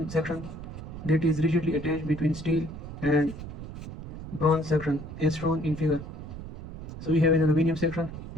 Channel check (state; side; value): noise; right; rumble, 10 dB below the sound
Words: section that is rigidly attached between steel and bronze section as shown in figure. So we have an aluminum section